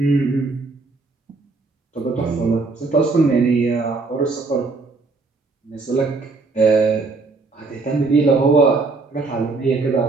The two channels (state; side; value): quieter; left; 3.8 dB